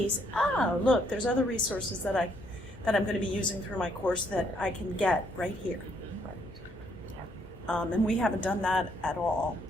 Oh, look, there's other resources that I'm going to be using through my course that I can get right here. And we haven't done that at all.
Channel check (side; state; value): both; normal; correlation 0.70